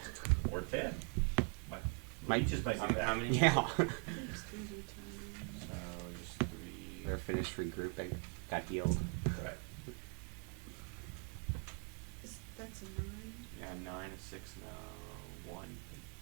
or 10. Might just might do that. How many? Yeah. I think it's 3D times. So just 3. They're finished regrouping. Got healed. Right. That's a 9. Yeah, 9, a 6, no, 1.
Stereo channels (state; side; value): quieter; left; 37.4 dB